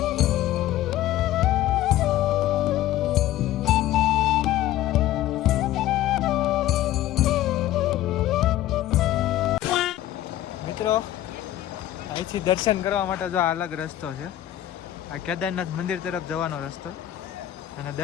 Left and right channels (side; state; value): right; quieter; 13.8 dB